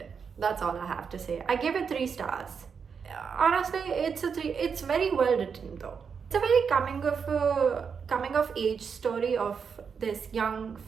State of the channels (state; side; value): quieter; left; 6.2 dB